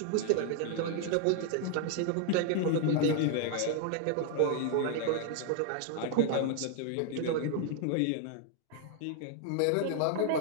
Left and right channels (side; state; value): both; different; correlation 0.00